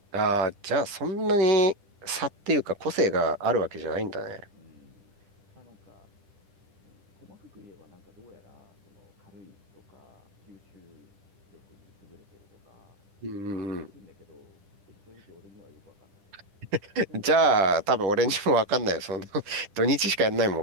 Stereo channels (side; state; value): left; late; 10 ms